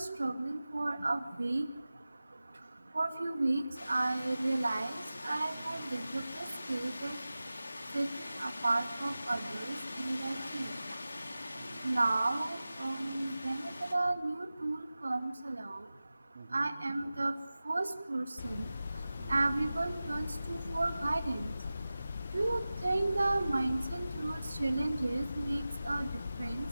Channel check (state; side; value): inverted; both; correlation -0.96